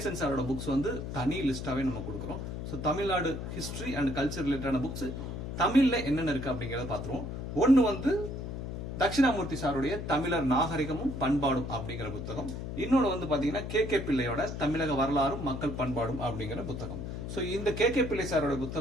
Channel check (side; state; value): left; noise; hum, 6 dB below the sound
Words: சாரோட புக்ஸ் வந்து தனி லிஸ்டாவே நம்ம கொடுக்குறோம். So Tamil Nadu history and culture ரிலேட்டடான புக்ஸ் தமிழ்ல என்னென்ன இருக்கு அப்படிங்கறத பாத்துருவோம். ஒன்னு வந்து தட்சிணாமூர்த்தி சாருடைய தமிழர் நாகரிகமும் பண்பாடும் அப்படிங்கிற புத்தகம். இன்னொன்னு வந்து பாத்தீங்கன்னா கே பிள்ளையோட தமிழக வரலாறும் மக்கள் பண்பாடும் அப்படிங்கிற புத்தகம். ஸோ இந்த கே பிள்ளை சாரோட